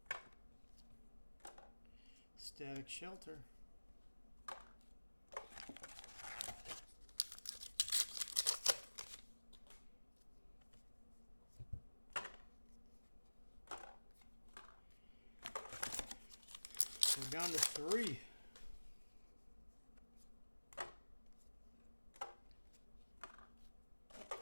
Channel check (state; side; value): inverted; both; correlation -1.00